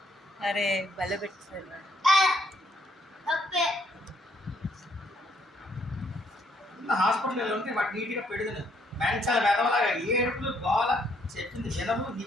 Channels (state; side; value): normal; both; correlation 0.70